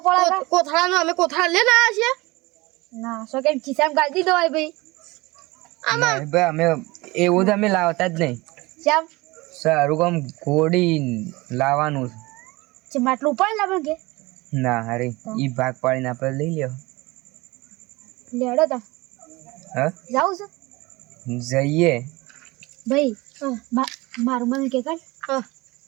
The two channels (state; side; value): quieter; left; 22.3 dB